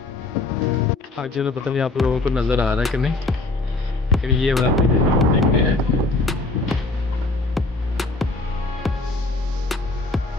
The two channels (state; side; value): quieter; right; 3.2 dB